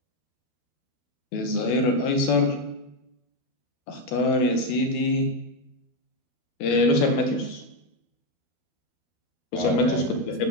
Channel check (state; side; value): late; right; 12 ms